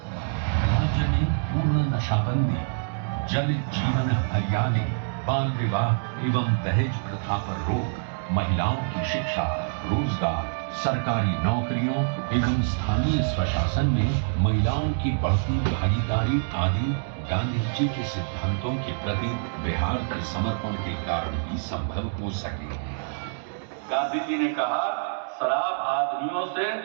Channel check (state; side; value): silent; left; digital silence